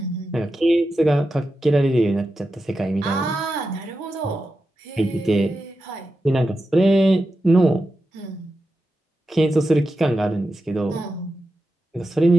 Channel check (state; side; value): normal; both; correlation 0.90